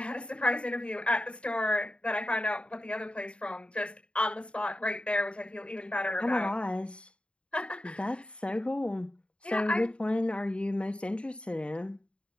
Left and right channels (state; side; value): late; right; 0.057 ms